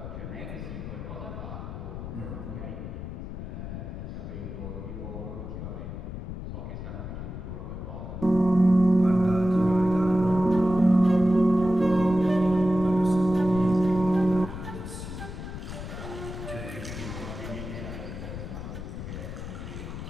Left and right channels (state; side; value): noise; left; rumble, 8 dB below the sound